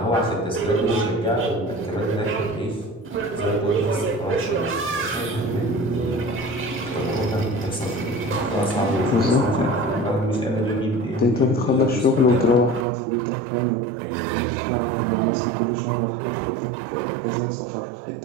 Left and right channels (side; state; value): left; drops out; at 12.9 s